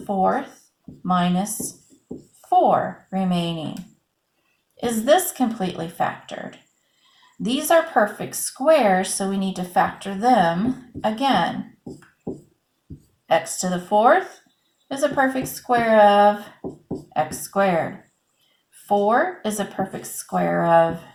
4th minus 4 remaining. Is this completely factored? These are perfect squares, so we need to factor them again. X to the 4th is a perfect square of x squared. 4 is a perfect square of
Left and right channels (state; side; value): identical; both; correlation 1.00